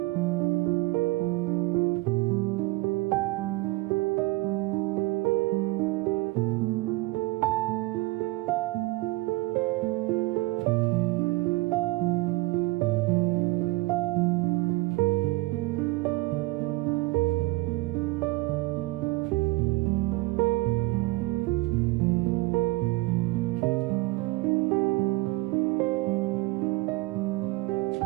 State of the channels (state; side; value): quieter; left; 21.6 dB